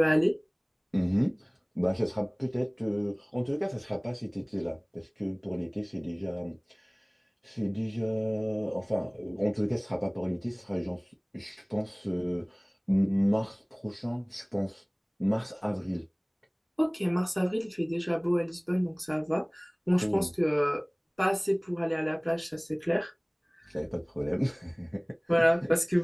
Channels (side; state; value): both; identical; correlation 1.00